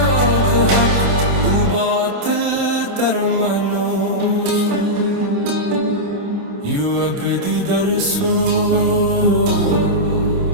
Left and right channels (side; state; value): left; late; 27 ms